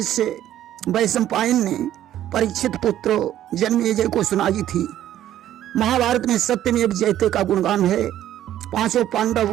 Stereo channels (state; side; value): quieter; left; 12.2 dB